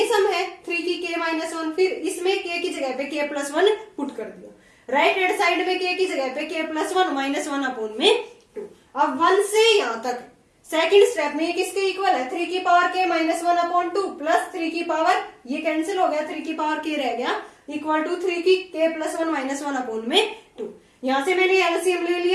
सम है 3 की k माइनस 1, फिर इसमें k की जगह पे k प्लस 1 पुट कर दिया। राइट हैंड साइड में k की जगह पे k प्लस 1 माइनस 1 अपॉन में 2। अब 1 से यहाँ तक सेकंड स्टेप में ये किसके इक्वल है, 3 की power k minus 1 upon 2 plus 3 की पावर, ये कैंसिल हो गया, 3 की पावर k रह गया, इक्वल टू 3 की k प्लस 1 माइनस 1 अपॉन में 2। यहाँ से मैंने एलसीएम ले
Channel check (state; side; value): identical; both; correlation 1.00